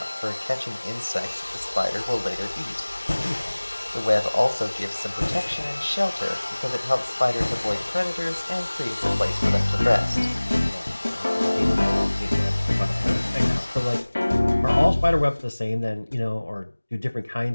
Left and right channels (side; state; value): both; inverted; correlation -1.00